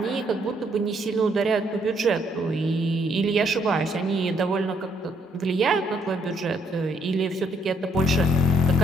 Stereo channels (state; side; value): normal; both; correlation 0.70